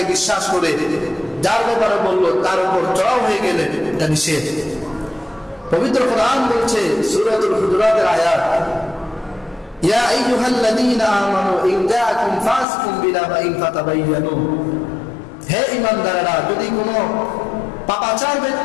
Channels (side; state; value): right; drops out; at 12.7 s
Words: বিশ্বাস করে যার ব্যাপারে বললো তার উপর চড়াও হয়ে গেলেন, এটা নিষেধ। পবিত্র কোরআন বলছে সূরাতুল হুজুরাতের আয়াত, ইয়া আইয়ুহাল্লাযীনা আমানু ইন জাআকুম ফাসিকুম বিনাবাইন ফাতাবায়ানু, হে ঈমানদাররা, যদি কোনো পাপাচার